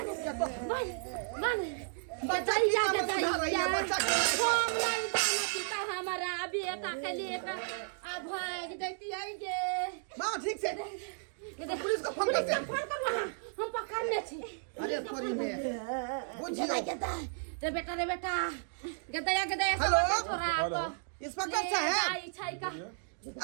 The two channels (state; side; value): silent; left; digital silence